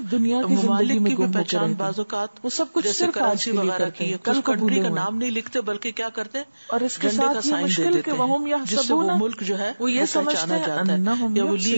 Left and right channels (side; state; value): both; inverted; correlation -1.00